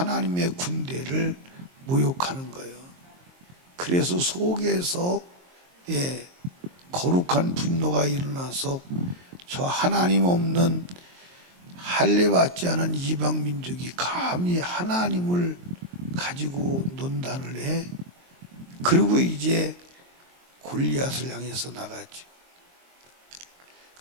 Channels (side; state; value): left; late; 23 ms